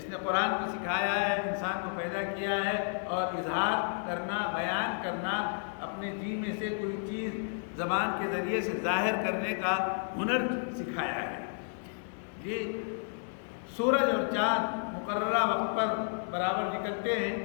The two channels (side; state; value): right; silent; 57 dB below the other